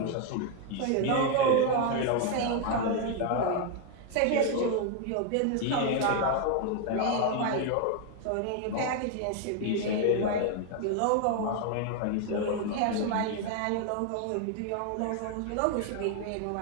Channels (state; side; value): different; both; correlation 0.01